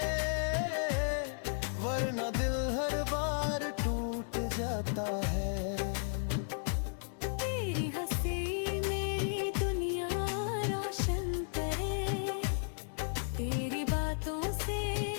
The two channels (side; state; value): right; silent; digital silence